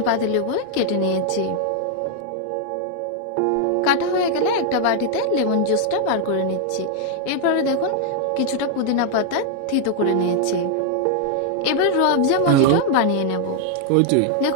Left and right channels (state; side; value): different; both; correlation 0.00